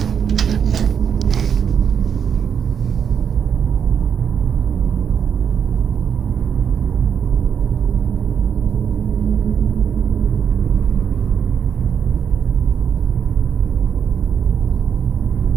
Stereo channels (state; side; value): quieter; left; 7.6 dB